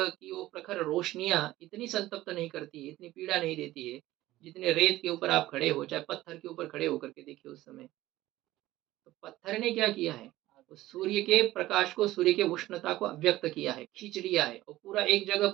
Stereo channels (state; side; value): quieter; left; 16.3 dB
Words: की वो प्रखर रोशनियां इतनी संतप्त नहीं करती है, इतनी पीड़ा नहीं देती है, जितने रेत के ऊपर आप खड़े हो, चाहे पत्थर के ऊपर खड़े होकर के देखिए उस समय। तो पत्थर ने क्या किया है, उस सूर्य के प्रकाश को, सूर्य के उष्णता को अव्यक्त किया है, खींच लिया है, और पूरा एक जगह